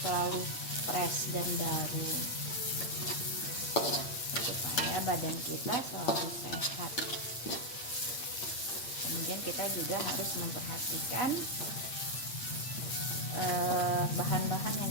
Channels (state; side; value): late; right; 8.6 ms